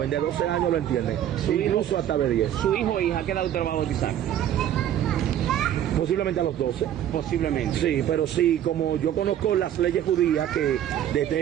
de 12 años lo entienden, incluso hasta de 10. ¿Su hijo o hija qué edad usted lo va a bautizar? Posiblemente a los 12. Posiblemente. Sí, pero sí, como yo conozco las leyes judías, que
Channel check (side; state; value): left; quieter; 10.9 dB